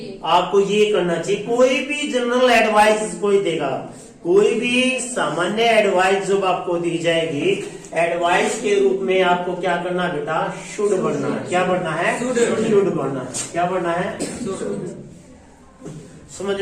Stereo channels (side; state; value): both; identical; correlation 1.00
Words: आपको ये करना चाहिए। कोई भी जनरल एडवाइस कोई देगा, कोई भी सामान्य एडवाइस जब आपको दी जाएगी, एडवाइस के रूप में आपको क्या करना बेटा? शुड बनना है। क्या बनना है? शुड बनना है। क्या बनना है? समझ